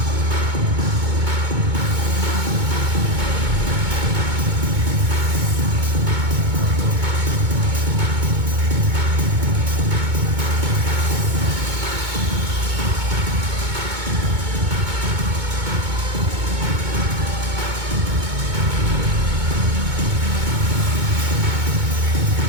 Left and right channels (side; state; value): left; late; 2.2 ms